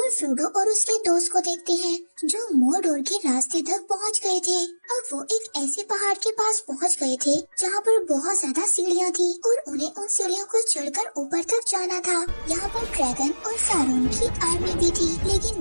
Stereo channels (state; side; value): inverted; both; correlation -1.00